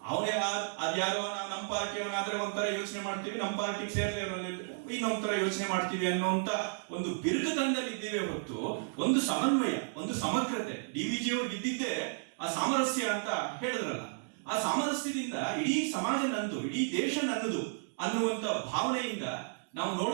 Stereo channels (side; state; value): left; silent; digital silence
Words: ಅವನೇ ಅದ್ಯಾರೋ ನಮ್ಮ ಪಾರ್ಟಿಯವನಾದ್ರೆ ಒಂಥರ ಯೋಚನೆ ಮಾಡ್ತೀವಿ, ನಮ್ಮ ಪಾರ್ಟಿಗೆ ಸೇರ್ದೇ ಇನ್ನೊಂದ್ ತರ ಯೋಚನೆ ಮಾಡ್ತೀವಿ ಅನ್ನೋಂತ ಒಂದು ಬಿರುಕುತನದಲ್ಲಿ ಇದ್ದೀವಿ ಹೊತ್ತು ಒಂದು ಸಮನ್ವಯ, ಒಂದು ಸಮಗ್ರತೆ. ಡಿವಿಜಿ ಅವ್ರಿಗೆ ಇದ್ದಿದ್ದೇ ಆ ಸಾಮರಸ್ಯ ಅಂತ ಹೇಳಿದ್ರಲ್ಲ, ಆ ಸಾಮರಸ್ಯದಿಂದ ಇಡೀ ಸಮಾಜ ನಂದು, ಇಡೀ ದೇಶ ನನ್ನದು ಅನ್ನುವಂತ ಭಾವನೆಯಿಂದ ನಾವು